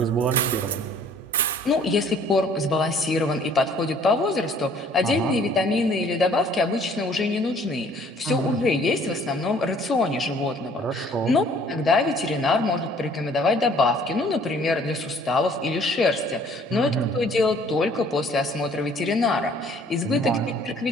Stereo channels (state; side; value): normal; both; correlation 0.57